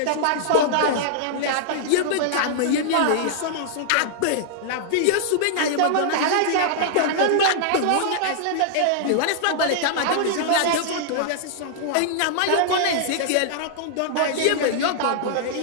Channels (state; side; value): different; both; correlation -0.01